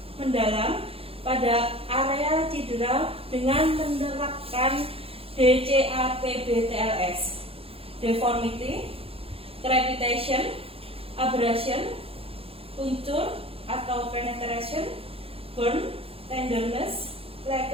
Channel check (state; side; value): late; left; 0.27 ms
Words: mendalam pada area cedera dengan menerapkan DCAPB-TLS, deformity, crepitation, abrasion, puncture atau penetration, burn, tenderness,